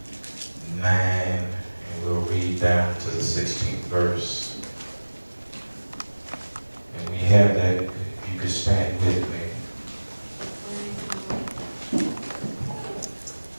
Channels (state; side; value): inverted; both; correlation -1.00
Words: 9, and we'll read down to the 16th verse. And we have that, if you could stand with me.